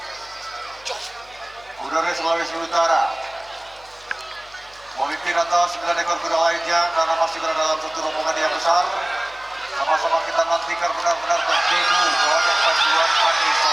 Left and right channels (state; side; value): noise; left; hum, 27 dB below the sound